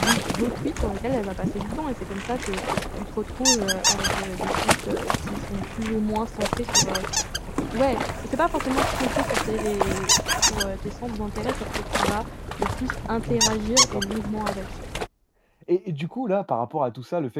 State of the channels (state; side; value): identical; both; correlation 1.00